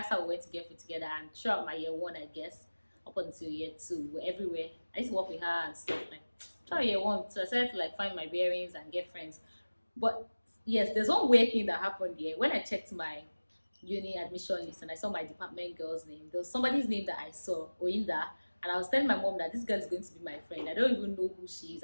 how we went to get food together. And throughout my year one, I guess, up until year two, we're everywhere. I used to work with her and stuff like throughout year one. So I started to like find my bearings and get friends. But yes, there's one weird thing that happened here. When I checked my uni admission list and I saw my department girl's name, there was somebody's name that I saw, Oinda, and I was telling my mom that this girl is going to be my friend. I don't even know who she is.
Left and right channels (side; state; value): both; inverted; correlation -1.00